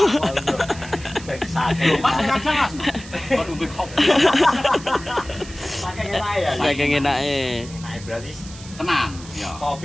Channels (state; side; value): noise; right; hiss, 17 dB below the sound